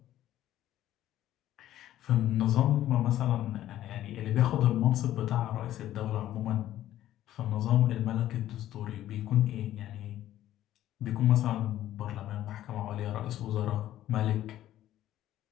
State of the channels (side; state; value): right; quieter; 13.0 dB